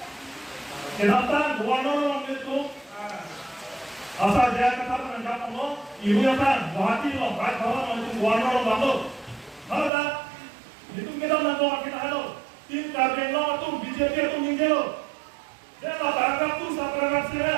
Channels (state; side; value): drops out; left; at 9.9 s